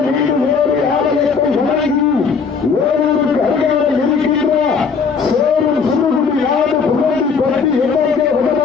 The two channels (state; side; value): quieter; right; 5.5 dB